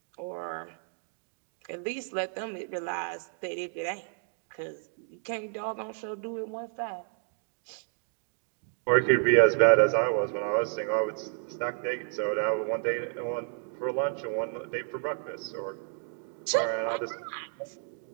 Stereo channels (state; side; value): silent; left; 57 dB below the other